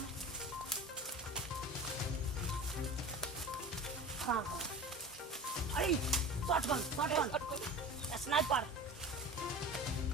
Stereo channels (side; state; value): both; normal; correlation 0.35